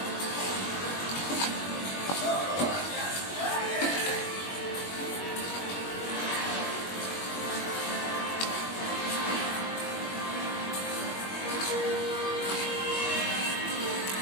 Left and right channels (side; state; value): right; late; 21 ms